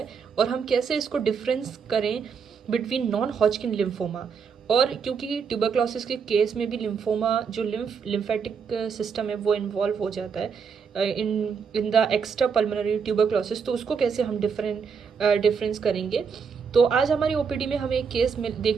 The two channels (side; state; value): left; quieter; 6.1 dB